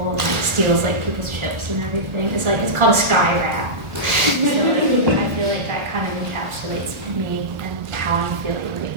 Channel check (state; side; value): late; left; 1.4 ms